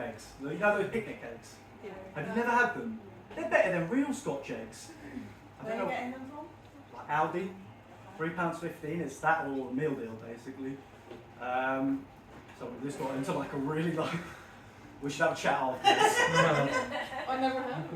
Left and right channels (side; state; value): both; identical; correlation 1.00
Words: You know those picnic eggs? Yeah. Have you never had them? They're better than real Scotch eggs. Where are you getting them from? Like Aldi, £3.15. It's that or a meal deal basically. So this got into like a really like. We should have a chat after this. I never heard of